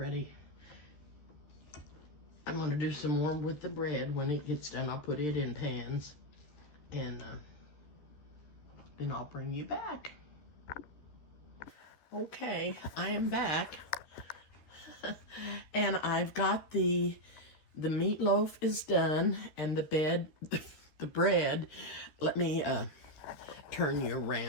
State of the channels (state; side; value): late; right; 13 ms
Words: I'm going to do some more with the bread. When it gets done, I'll put it in pans, and then I'll bring you back. Okay, I am back. And I've got the meatloaf is done, and the bread. Let me turn you